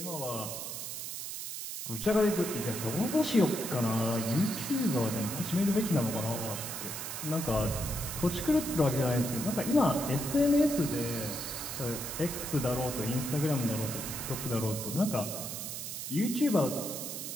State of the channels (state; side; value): noise; right; hiss, 6 dB below the sound